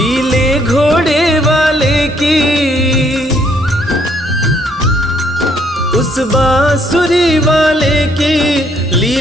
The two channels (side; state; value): both; normal; correlation 0.68